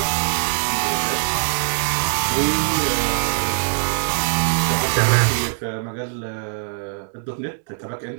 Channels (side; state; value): left; silent; 64 dB below the other